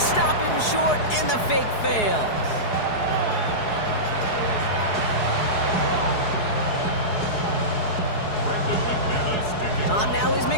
him short, and the fake fails. On now is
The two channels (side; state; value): right; late; 4.7 ms